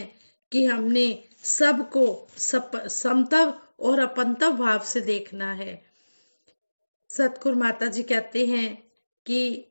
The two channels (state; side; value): inverted; both; correlation -1.00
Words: कि हमने सबको समतव और अपंतव भाव से देखना है। सतगुरु माता जी कहते हैं कि